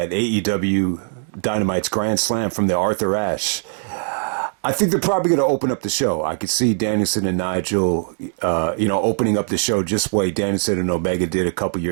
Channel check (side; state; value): left; silent; 65 dB below the other